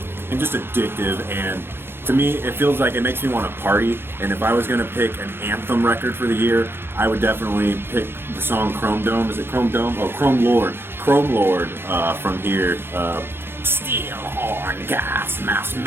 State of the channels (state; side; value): late; left; 0.11 ms